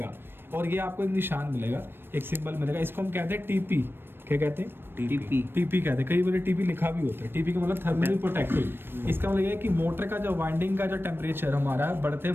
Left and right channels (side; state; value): left; late; 0.10 ms